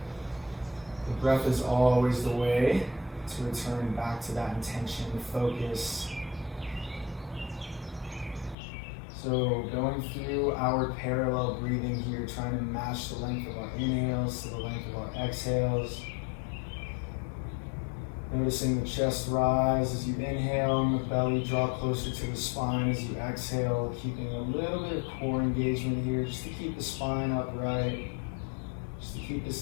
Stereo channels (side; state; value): right; drops out; at 8.6 s